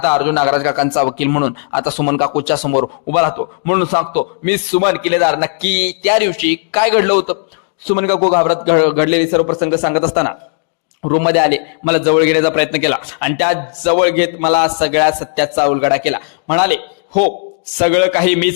अर्जुन नागराज काकांचा वकील म्हणून आता सुमन काकूच्या समोर उभा राहतो. म्हणून सांगतो मी सुमन किल्लेदार नक्की त्या दिवशी काय घडलं होतं. सुमन काकू घाबरत घडलेले सर्व प्रसंग सांगत असताना रूम मध्ये आले, मला जवळ घेण्याचा प्रयत्न केला आणि त्या जवळ घेत मला सगळ्या सत्याचा उलगडा केला. म्हणाले हो सगळं काही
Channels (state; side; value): silent; right; digital silence